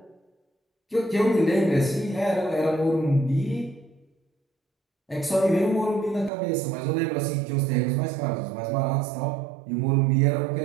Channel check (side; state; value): left; drops out; at 6.3 s